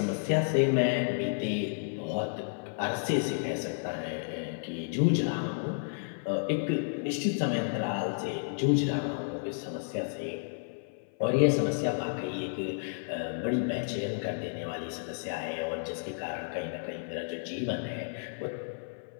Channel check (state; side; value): silent; right; 55 dB below the other